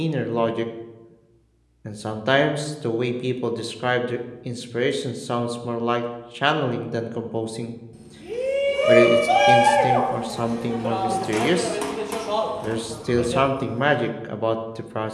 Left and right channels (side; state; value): both; identical; correlation 1.00